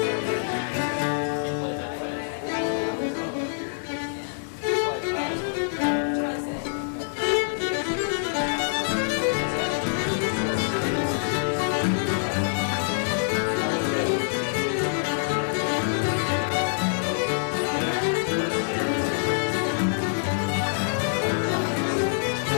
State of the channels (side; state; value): right; silent; digital silence